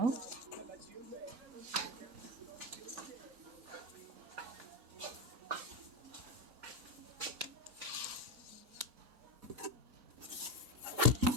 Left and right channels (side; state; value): both; normal; correlation 0.15